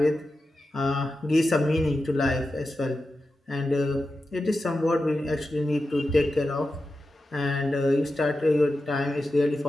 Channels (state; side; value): normal; both; correlation 0.91